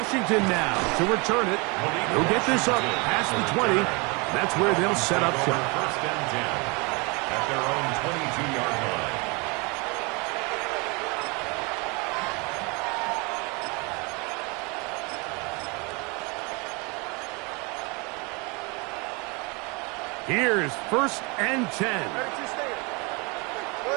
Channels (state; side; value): quieter; left; 29.3 dB